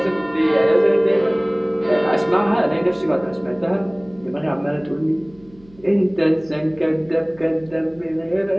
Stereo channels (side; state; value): right; noise; hum, 26 dB below the sound